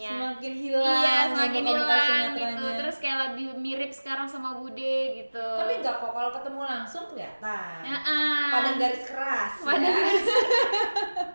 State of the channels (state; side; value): inverted; both; correlation -1.00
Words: semakin hilang gitu. Terus kayak lebih mirip sekarang sama Bude gitu. Tapi enggak kok, kalau ketemu langsung kelihatan. Padang garis keras.